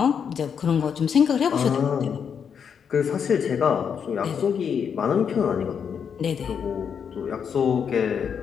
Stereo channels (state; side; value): quieter; right; 7.2 dB